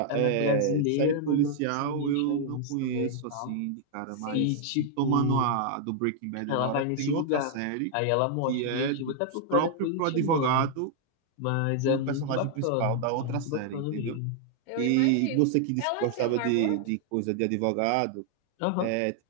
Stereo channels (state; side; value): different; both; correlation 0.00